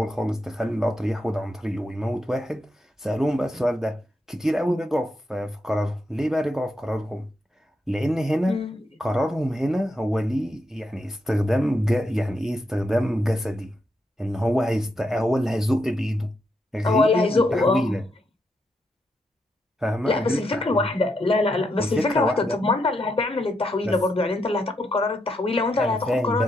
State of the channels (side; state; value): both; normal; correlation 0.81